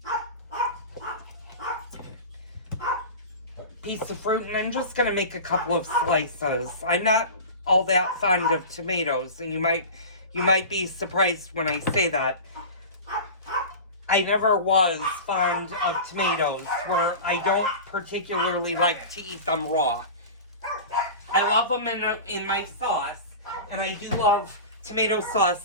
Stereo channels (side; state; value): both; inverted; correlation -0.32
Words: piece of fruit, and I'm just going to make a couple of slices. I'm not all that fond of tomatoes, and you might be surprised when I say that. I never was fond of tomatoes, where I don't particularly like to eat them raw. I love them in my sauce, and I do love tomato